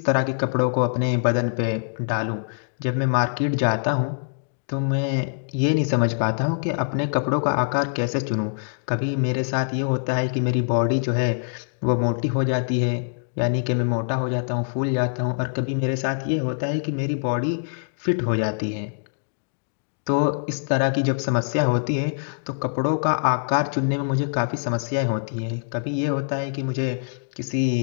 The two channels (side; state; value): right; silent; digital silence